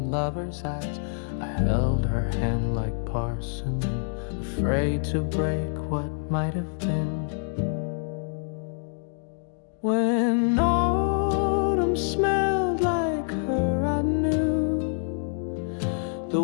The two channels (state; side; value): silent; right; 61 dB below the other